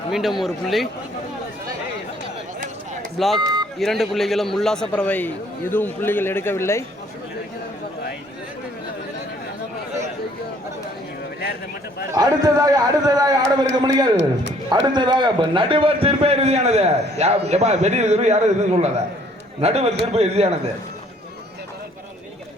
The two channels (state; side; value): normal; both; correlation 0.60